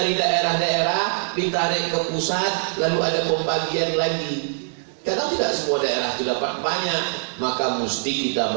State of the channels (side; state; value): left; silent; digital silence